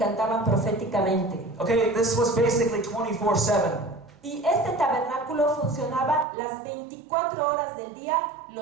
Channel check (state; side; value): drops out; left; at 6.2 s